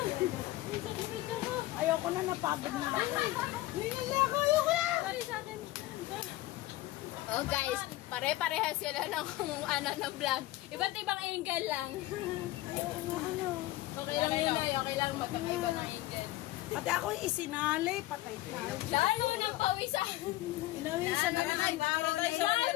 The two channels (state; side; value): quieter; right; 16.9 dB